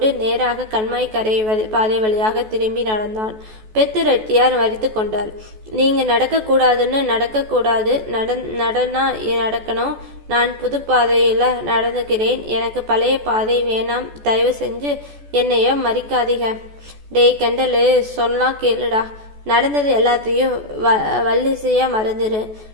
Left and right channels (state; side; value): late; left; 14 ms